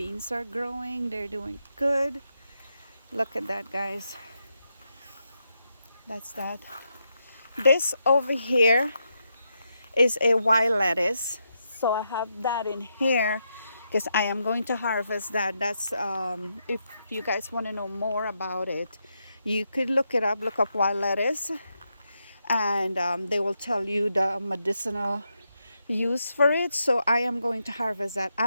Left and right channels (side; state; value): both; inverted; correlation -0.83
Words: are growing. They're doing good. Look at that, guys. That's that. This over here is a wild lettuce. So I have that in here because I am going to harvest that. That's if you guys want to know more about it, you could look it up. Look up wild lettuce, and they will tell you the medicinal use for it. So I am going to harvest that.